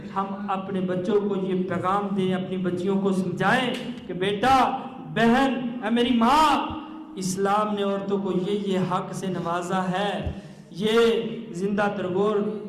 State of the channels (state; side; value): identical; both; correlation 1.00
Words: ہم اپنے بچوں کو یہ پیغام دیں، اپنی بچیوں کو سمجھائیں کہ بیٹا، بہن، اے میری ماں، اسلام نے عورتوں کو یہ حق سے نوازا ہے، یہ زندہ ترگور